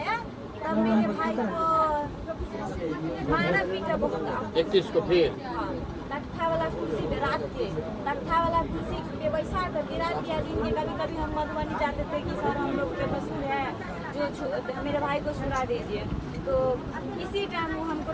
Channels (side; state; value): both; identical; correlation 1.00